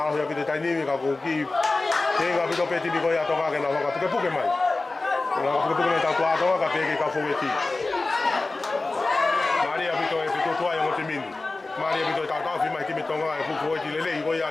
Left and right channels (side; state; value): right; quieter; 3.3 dB